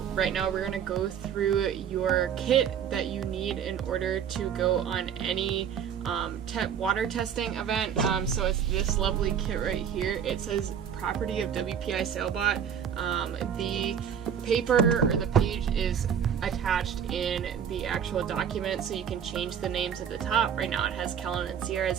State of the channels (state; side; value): quieter; left; 8.2 dB